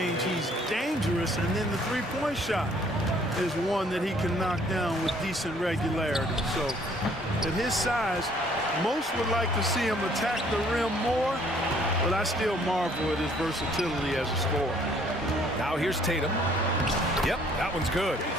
he's dangerous, and then the three-point shot is one that he can knock down with decent regularity. So, at his size, most would like to see him attack the rim more, but I still marvel at his versatility as a scorer. Now here's Tatum. Yep, that one's good.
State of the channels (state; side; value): normal; both; correlation 0.61